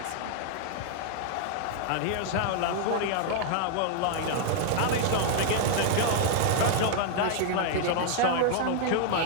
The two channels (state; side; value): different; both; correlation 0.00